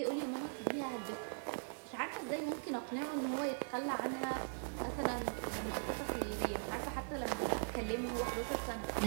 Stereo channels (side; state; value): left; silent; 51 dB below the other